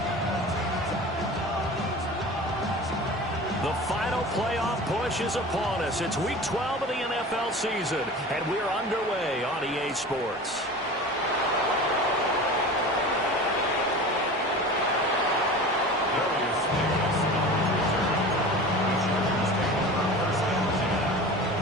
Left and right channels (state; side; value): normal; both; correlation 0.36